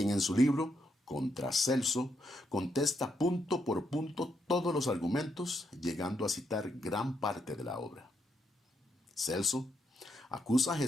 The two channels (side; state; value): both; normal; correlation 0.78